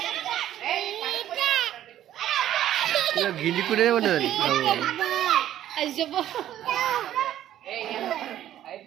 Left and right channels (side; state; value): left; quieter; 12.1 dB